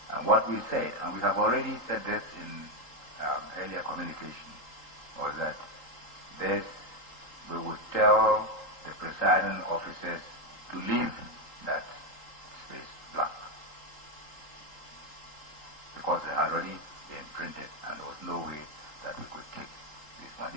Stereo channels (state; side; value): late; right; 3.8 ms